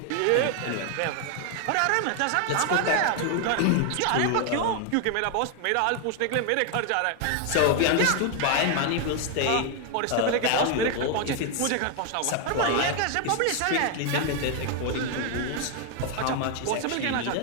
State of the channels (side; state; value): both; different; correlation 0.01